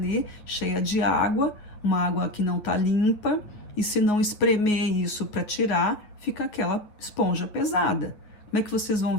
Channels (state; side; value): late; right; 9.3 ms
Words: cheia de água, uma água que não está limpa, e se não espremer isso para tirar, fica aquela esponja pesada. Como é que vocês vão